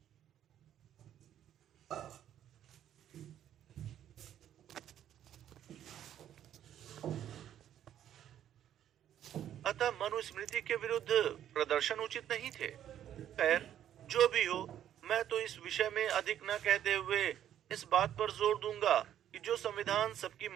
अतः मनुस्मृति के विरुद्ध प्रदर्शन उचित नहीं थे। खैर, जो भी हो, मैं तो इस विषय में अधिक न कहते हुए इस बात पर जोर दूंगा कि जो संविधान सबकी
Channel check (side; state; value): left; quieter; 10.7 dB